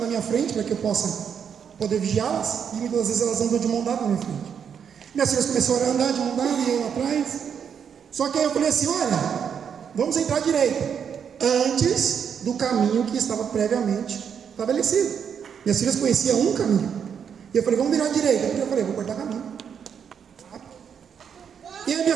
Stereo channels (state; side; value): quieter; left; 7.5 dB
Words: minha frente, para que eu possa poder vigiá-las, e muitas vezes elas andam de mão dada na minha frente. Minhas filhas começaram a andar de mão dada, e eu atrás. Só que aí eu falei assim: olha, vamos entrar à direita, antes do caminho que estava previamente estabelecido. Minhas filhas conheciam um caminho, e eu falei: vamos virar à direita. Eu falei: vou cortar caminho. E aí